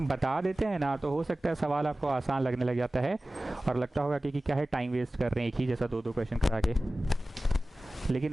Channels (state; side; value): normal; both; correlation 0.97